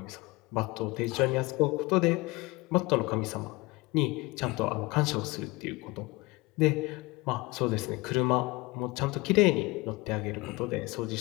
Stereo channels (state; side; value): quieter; right; 22.6 dB